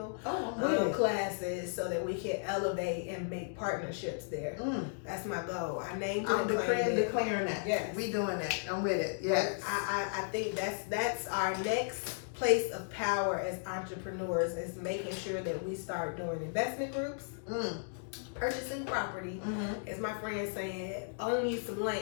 classes so that we can elevate and make partnerships there. That's my goal. I named it I'm and claimed it. declaring that. Yes. We doing that. I'm with it. Yes. I think that's our next place of power as entrepreneurs, is making sure that we start doing investment groups, purchasing property, as my friend said, own you some land.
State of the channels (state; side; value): silent; right; digital silence